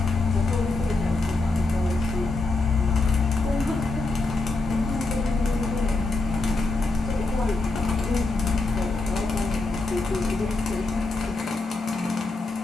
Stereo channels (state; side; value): quieter; right; 3.4 dB